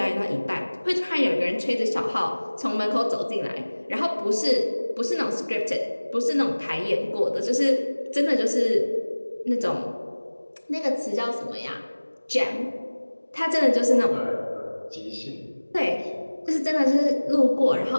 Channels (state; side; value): inverted; both; correlation -1.00